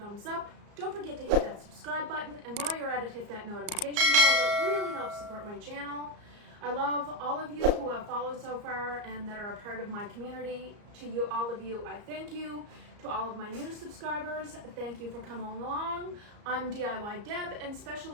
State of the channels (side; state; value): left; late; 34 ms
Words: thumbs up. Don't forget to hit that subscribe button, and while you're at it, hit that notification bell. It really helps support my channel. I love all of you who have followed so far and that are a part of my community. To you, all of you, I thank you. To all of my new subscribers, thank you for coming along. I'm DIY Deb and